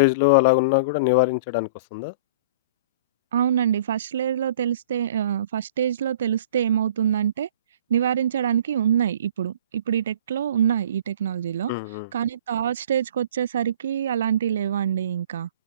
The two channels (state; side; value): inverted; both; correlation -0.44